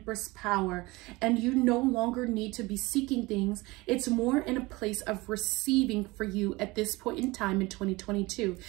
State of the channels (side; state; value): left; quieter; 22.3 dB